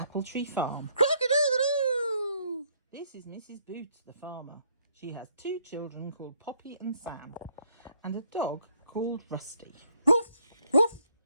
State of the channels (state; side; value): inverted; both; correlation -0.68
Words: Tree Farm. Crock-a-doodle-doo! This is Mrs. Boots, the farmer. She has 2 children called Poppy and Sam, and a dog called Rusty. Roof, roof,